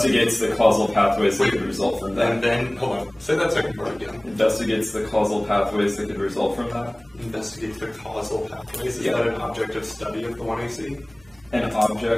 the causal pathways that could result from that. And then, hold on, say that second part again. Investigates the causal pathways that could result from that. Investigates the causal pathways. Is Yeah. that an objective study of the 1AC? An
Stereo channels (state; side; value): noise; right; hum, 28 dB below the sound